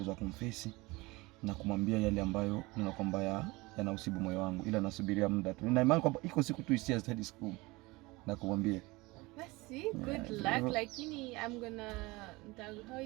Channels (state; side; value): quieter; left; 22.7 dB